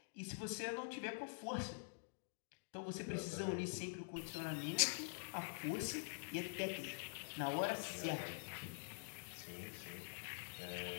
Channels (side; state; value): right; silent; digital silence